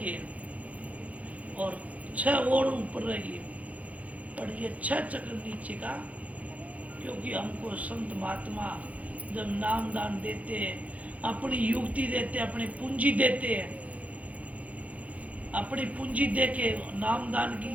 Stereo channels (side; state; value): left; late; 0.069 ms